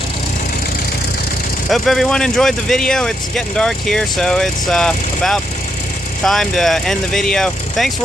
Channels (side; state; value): both; normal; correlation 0.79